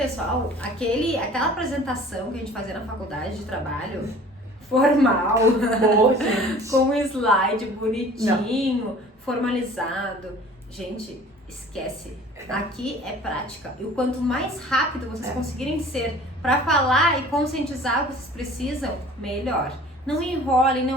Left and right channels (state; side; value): normal; both; correlation 0.47